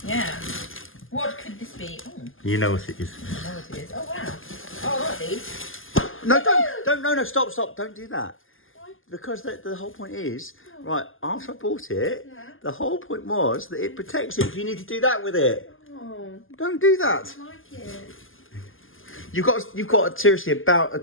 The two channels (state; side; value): late; right; 0.59 ms